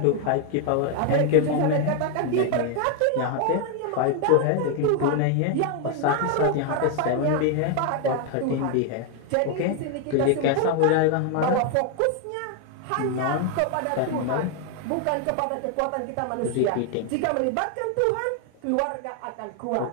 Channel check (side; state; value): both; different; correlation 0.01